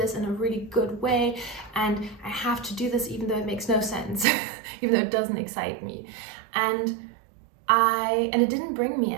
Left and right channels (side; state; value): left; drops out; at 4.2 s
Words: in a really good way, and I have to do this even though it makes no sense, even though it doesn't excite me. And it didn't bring me